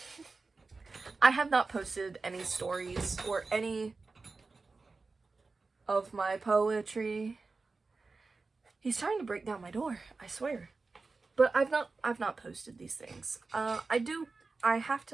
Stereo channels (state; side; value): quieter; left; 3.9 dB